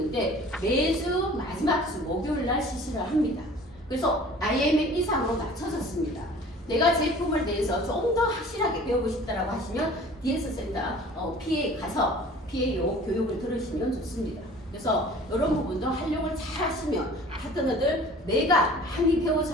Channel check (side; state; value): both; normal; correlation 0.46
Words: 매주 마지막 주 목요일 날 실시를 합니다. 그래서 IMM 이상으로 낮춰졌습니다. 내가 제품을 대해서 좀 더 확실하게 배우고 싶다라고 하시면 DS 센터 PA 가서 PAO 교육을 들으시면 좋습니다. 그래서 이런 부분도 활용을 잘 하시면 파트너들 내가 많이